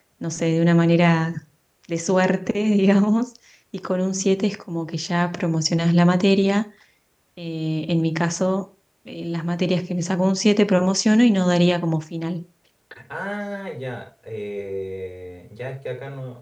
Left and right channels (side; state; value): both; identical; correlation 1.00